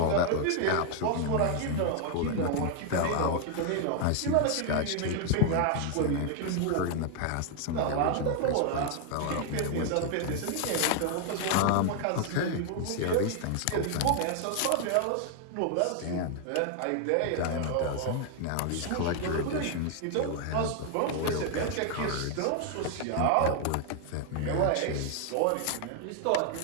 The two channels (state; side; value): different; both; correlation 0.00